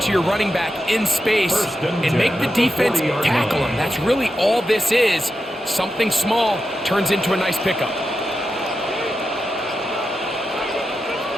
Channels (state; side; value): normal; both; correlation 0.89